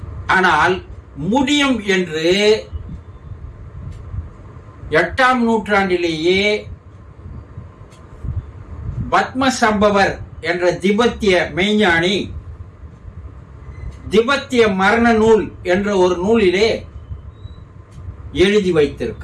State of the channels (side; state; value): both; identical; correlation 1.00